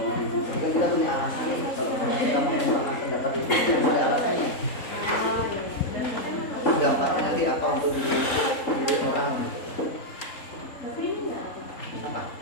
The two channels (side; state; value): right; late; 3.7 ms